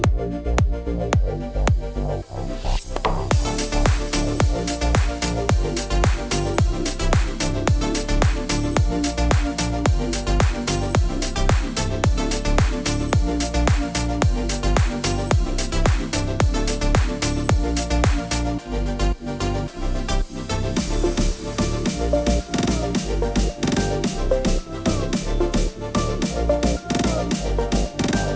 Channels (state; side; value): identical; both; correlation 1.00